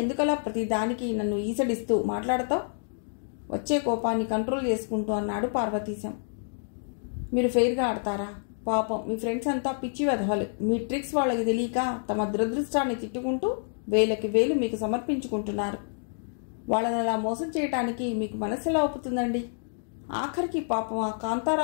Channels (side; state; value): right; silent; digital silence